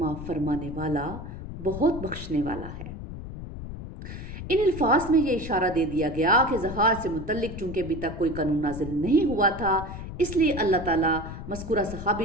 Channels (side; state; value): left; noise; rumble, 9 dB below the sound